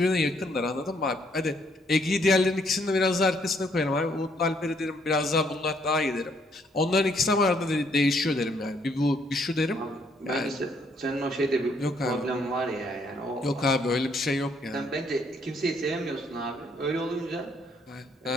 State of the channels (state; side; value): normal; both; correlation 0.69